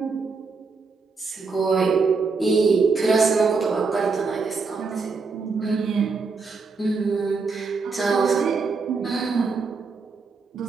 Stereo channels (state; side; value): quieter; left; 4.6 dB